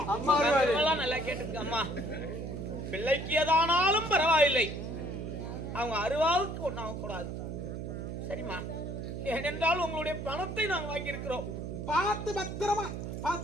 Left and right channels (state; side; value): noise; right; hum, 6 dB below the sound